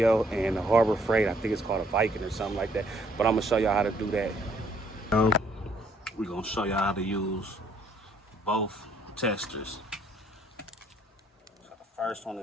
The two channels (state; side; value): normal; both; correlation 0.66